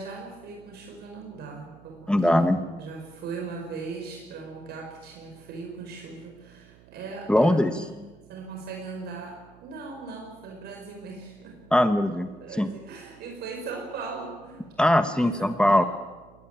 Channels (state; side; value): noise; right; hum, 24 dB below the sound